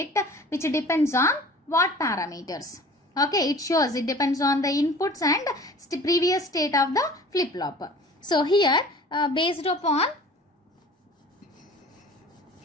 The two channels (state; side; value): normal; both; correlation 0.45